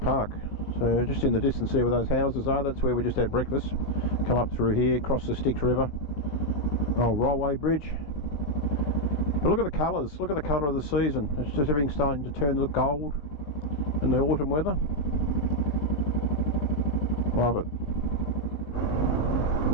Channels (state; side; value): late; right; 20 ms